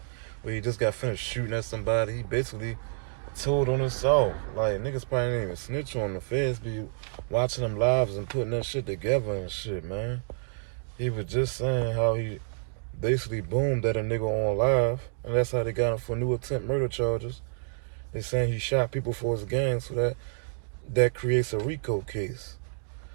where he just got finished shooting at somebody. He basically told on himself. Like, niggas probably didn't even snitch on the feds be watching them lives and putting that shit together and shit, man. He was just saying how he basically boomed at a nigga on live, and that's how they got him for new attempt murder charges. They saying he shot people for his gang, so that creates a Rico case.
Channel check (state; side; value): silent; left; digital silence